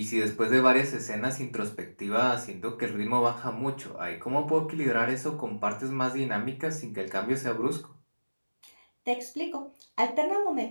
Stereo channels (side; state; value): both; inverted; correlation -1.00